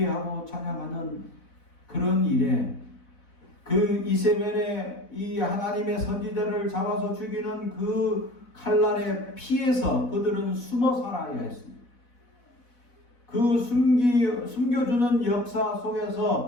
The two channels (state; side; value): late; right; 4.1 ms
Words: 찬양하는 그런 일에, 그 이세벨의 이 하나님의 선지자를 잡아서 죽이는 그 칼날에 피해서 그들은 숨어 살아야 했습니다. 그 숨겨주는 역사